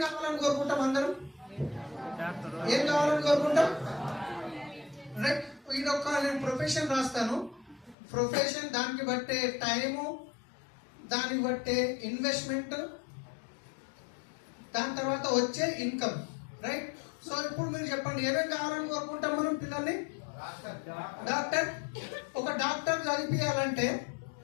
కావాలని కోరుకుంటాం? అందరం ఏం కావాలని కోరుకుంటాం? రైట్. ఇదొక నేను ప్రొఫెషన్ రాస్తాను, ప్రొఫెషన్ దానికి బట్టే టైము, దానికి బట్టే ఇన్వెస్ట్మెంట్, దాని తర్వాత వచ్చే ఇన్కమ్, రైట్. సో ఇప్పుడు మీరు చెప్పండి, ఏమేమి కావాలని కోరుకుంటాం మనం పిల్లల్ని? డాక్టర్. ఒక డాక్టర్ చదివించాలంటే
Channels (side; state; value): right; drops out; at 8.0 s